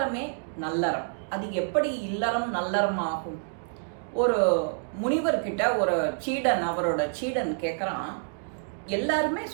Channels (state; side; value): silent; left; digital silence